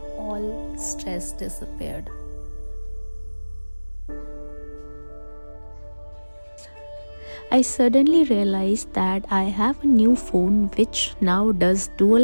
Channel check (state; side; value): inverted; both; correlation -1.00